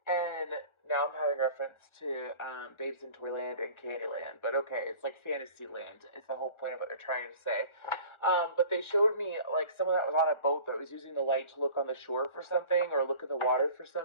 and now I'm having reference to Babes in Toyland and Candyland. But okay, it's like Fantasyland. It's the whole point of what they're trying to say. But they showed me like someone that was on a boat that was using the light to look on the shore for something or look in the water for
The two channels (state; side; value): late; right; 1.4 ms